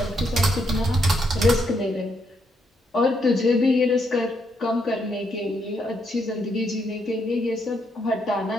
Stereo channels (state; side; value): normal; both; correlation 0.77